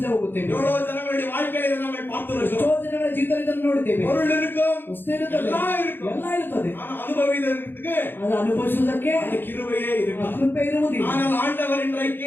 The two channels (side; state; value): right; late; 0.099 ms